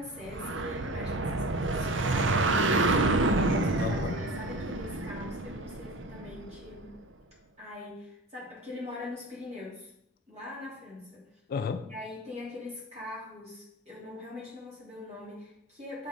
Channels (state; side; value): normal; both; correlation 0.33